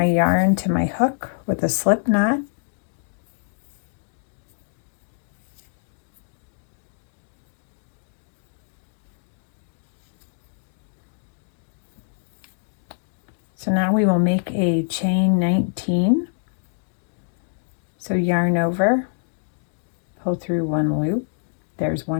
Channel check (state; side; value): silent; right; digital silence